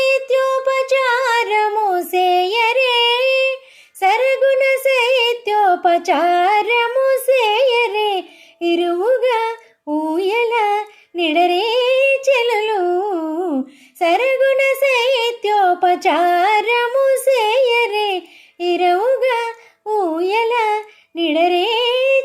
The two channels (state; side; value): identical; both; correlation 1.00